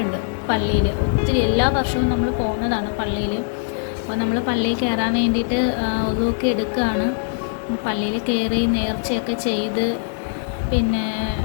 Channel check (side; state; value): right; silent; 65 dB below the other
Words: പള്ളിയിൽ. ഒത്തിരി എല്ലാ വർഷവും നമ്മൾ പോകുന്നതാണ് പള്ളിയിൽ. അപ്പോൾ നമ്മൾ പള്ളിയിൽ കയറാൻ വേണ്ടിയിട്ട് ഒതുക്കി എടുക്കുകയാണ്. പള്ളിയിൽ കയറി നേർച്ചയൊക്കെ ചെയ്ത് പിന്നെ